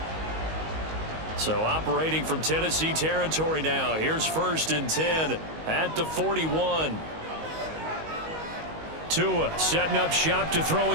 So operating from Tennessee territory now. Here's 1st and 10 at the 41. Tua setting up shop to throw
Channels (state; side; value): late; left; 19 ms